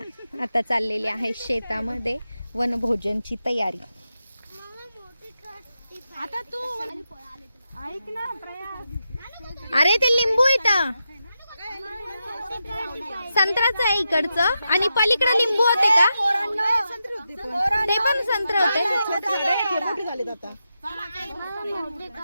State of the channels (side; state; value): both; inverted; correlation -0.88